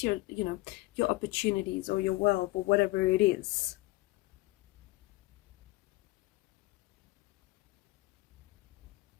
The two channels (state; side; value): quieter; right; 19.7 dB